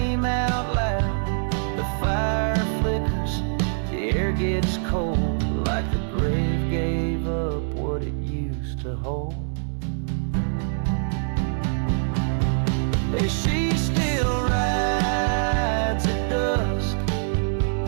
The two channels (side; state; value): left; silent; 62 dB below the other